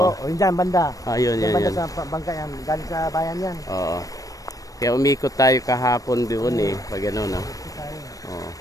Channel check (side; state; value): right; late; 0.17 ms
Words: yun dyan, banda. Yun. Banda sa bangka yan. Galing sa bayan yan. Oo. Kaya umikot tayo kahapon doon eh. Pag ano no? Oo.